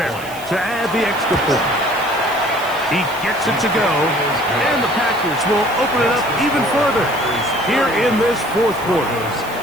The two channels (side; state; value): right; noise; hiss, 17 dB below the sound